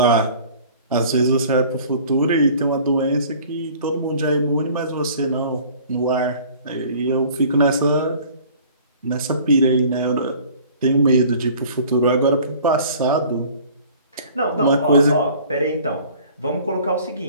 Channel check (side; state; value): both; inverted; correlation -0.49